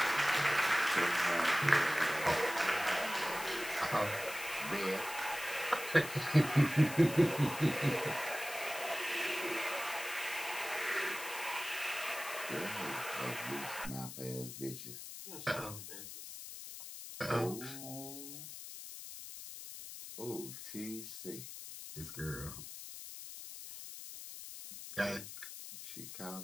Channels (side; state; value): left; noise; hiss, 10 dB below the sound